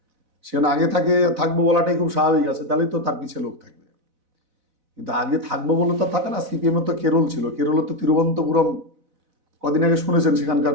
সেখানে আগে থাকবো বলাটাই খুব স্বাভাবিক আছে, তাহলেই তো তার পিছিয়ে লোক থাকবে। কিন্তু আগে থাকবো বলে তো থাকে না। সিপিএম তো কেরল ছিল, কেরলে তো তিরুবনন্তপুরম কদিন আগে শুনেছেন সেখানকার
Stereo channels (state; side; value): late; left; 4.0 ms